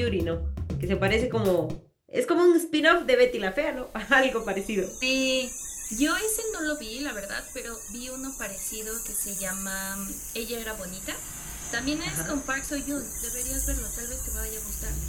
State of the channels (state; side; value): identical; both; correlation 1.00